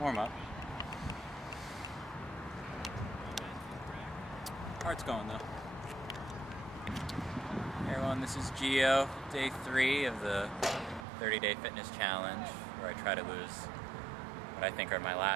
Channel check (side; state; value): left; drops out; at 11.1 s